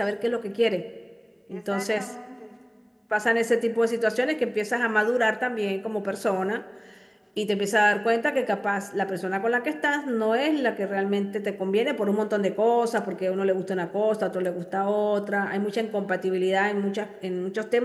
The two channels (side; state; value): both; identical; correlation 1.00